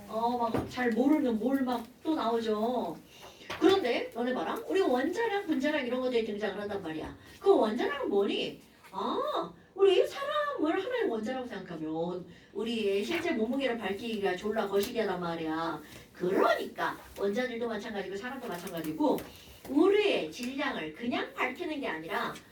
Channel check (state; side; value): identical; both; correlation 1.00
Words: 막 잘 모르는 뭘 막 또 나오죠. 그런데, 너네 봐라. 우리 원자량, 분자량 이런 것들이 등장을 한단 말이야. 그 원자량은 뭐니? 우리 사람을 하나의 원자라고 생각하면 우리의 실제 몸무게를 밝히기가 졸라 거시기하단 말이야. 그러니까 원자들도 마찬가지고 사람도 마찬가지고 우리의 질량을 그냥 밝히는 게 아니라